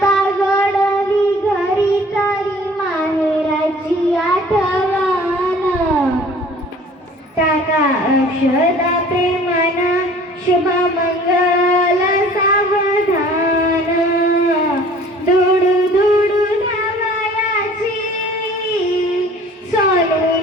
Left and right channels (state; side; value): normal; both; correlation 0.50